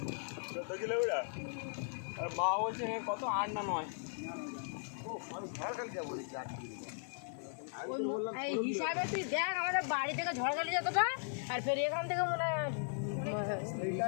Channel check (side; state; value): right; silent; 53 dB below the other